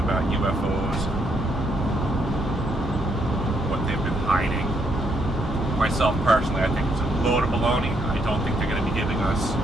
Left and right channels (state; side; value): normal; both; correlation 0.74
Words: UFOs, what they've been hiding. Myself personally, I think it's a load of baloney. I don't think they're going to be giving us